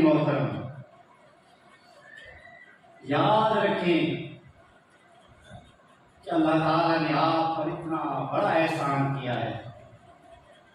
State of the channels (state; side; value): identical; both; correlation 1.00